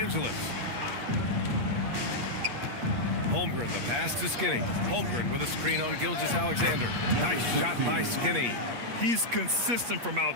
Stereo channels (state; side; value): late; left; 8.5 ms